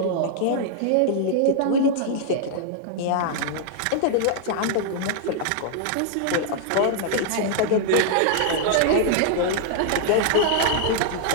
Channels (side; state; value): both; different; correlation -0.01